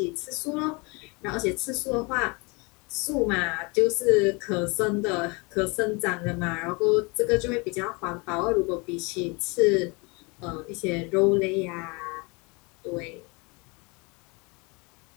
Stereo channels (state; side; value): quieter; right; 29.0 dB